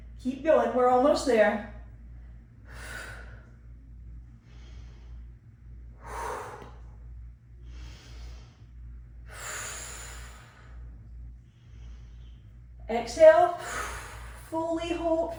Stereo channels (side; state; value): both; identical; correlation 1.00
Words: Keep going. We're almost there. Exhale. Fully hold,